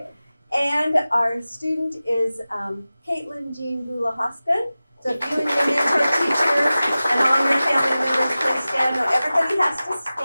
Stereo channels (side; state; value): both; inverted; correlation -0.96